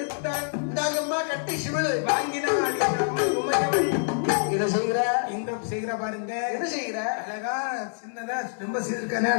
இந்தாங்கம்மா கட்டி சிமிழ் வாங்கினாள் உமையவள். என்ன செய்கிற? இந்த செய்கிற பாருங்க என்ன செய்கிற? அழகா சின்னதா ரொம்ப செய்திருக்கானே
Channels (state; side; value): silent; right; digital silence